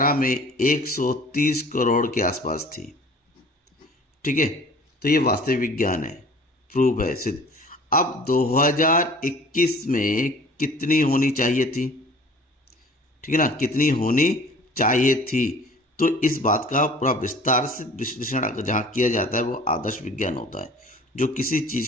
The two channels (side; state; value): both; normal; correlation 0.47